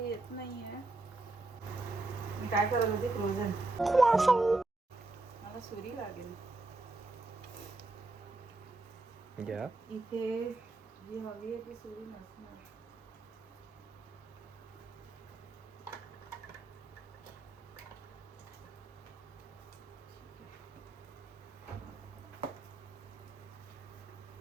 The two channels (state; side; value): quieter; left; 3.2 dB